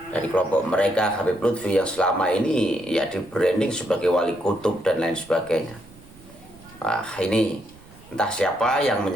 dari kelompok mereka, Habib Lutfi, yang selama ini ya di branding sebagai wali kutub dan lain sebagainya. Ini entah siapa yang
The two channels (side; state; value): right; noise; rumble, 24 dB below the sound